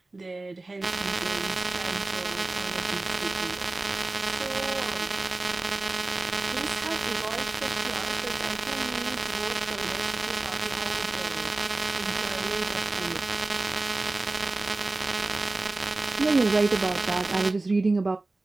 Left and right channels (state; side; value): quieter; left; 3.1 dB